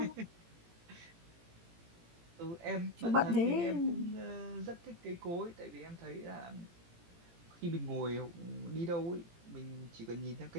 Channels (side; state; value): left; late; 18 ms